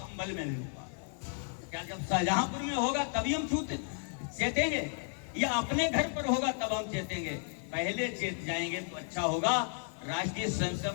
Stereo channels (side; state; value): right; silent; 56 dB below the other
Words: में भी हुआ। क्या जब शाहजहांपुर में होगा तभी हम चेतेंगे, या अपने घर पर होगा तब हम चेतेंगे? पहले चेत जाएंगे तो अच्छा होगा। राष्ट्रीय